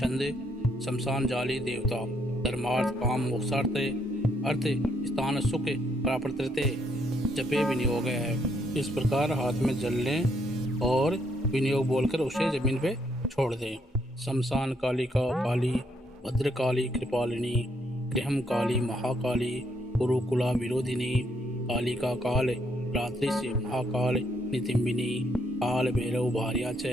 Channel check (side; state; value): both; normal; correlation 0.73